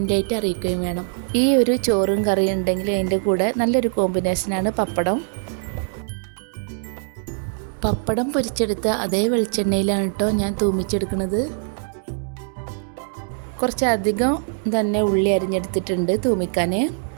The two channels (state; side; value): silent; left; 64 dB below the other